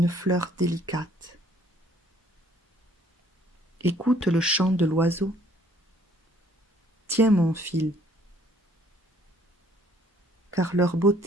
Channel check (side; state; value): both; normal; correlation 0.61